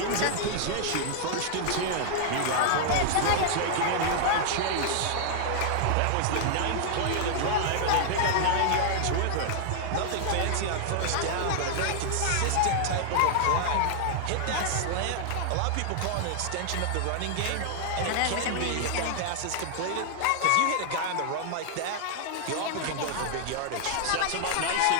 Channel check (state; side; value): different; both; correlation 0.00